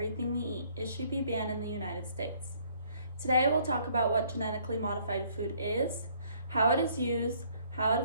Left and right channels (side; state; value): both; inverted; correlation -0.63